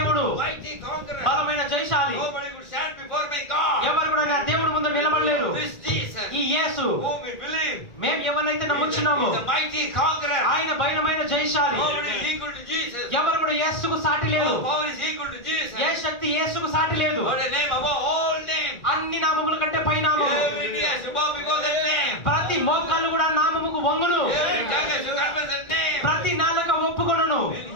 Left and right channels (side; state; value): right; late; 1.5 ms